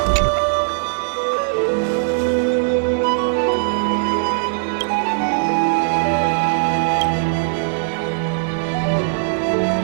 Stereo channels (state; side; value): silent; left; digital silence